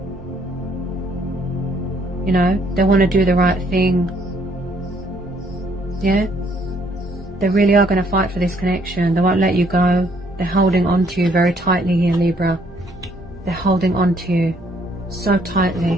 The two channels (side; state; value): both; normal; correlation 0.66